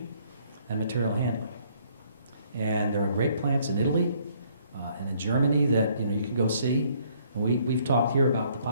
and material handling. And there are great plants in Italy and in Germany that you can go see. And we've talked here about the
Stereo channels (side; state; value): both; inverted; correlation -0.64